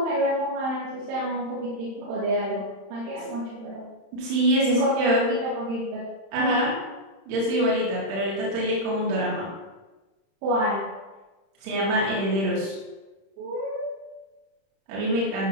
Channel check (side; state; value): left; late; 31 ms